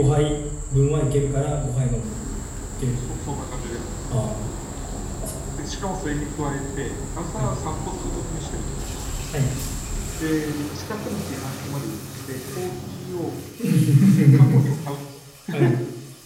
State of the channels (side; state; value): both; identical; correlation 1.00